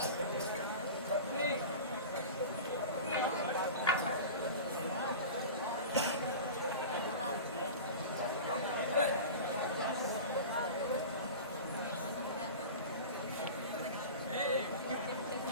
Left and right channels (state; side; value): inverted; both; correlation -0.32